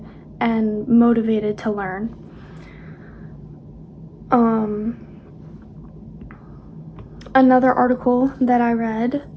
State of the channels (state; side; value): identical; both; correlation 1.00